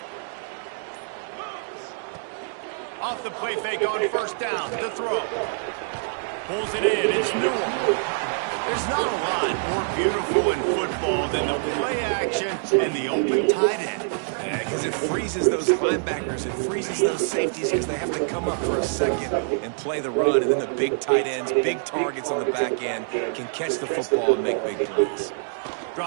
Off the play fake on first down. The throw. Pulls it in. It's Newell. There's not a lot more beautiful in football than the play action and the open tight end. Yeah, because it freezes those linebackers. It freezes those safeties because they have to come up for a second and play the run. And then the big tight ends, big targets on the back end can catch the football and make big plays.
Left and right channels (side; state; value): left; silent; digital silence